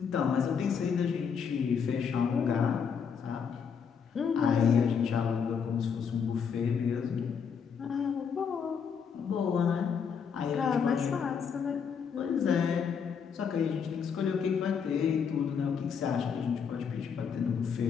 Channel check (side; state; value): right; quieter; 6.7 dB